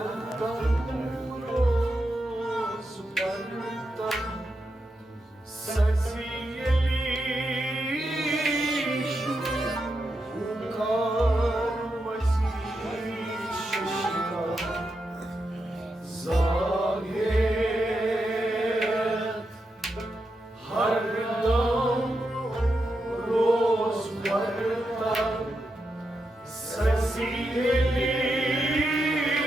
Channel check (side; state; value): both; normal; correlation 0.86